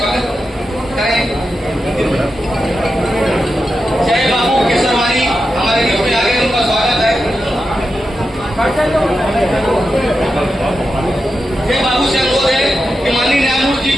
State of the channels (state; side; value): normal; both; correlation 0.89